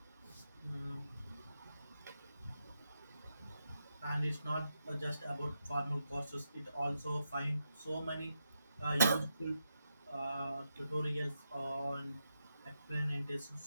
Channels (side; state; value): both; inverted; correlation -0.85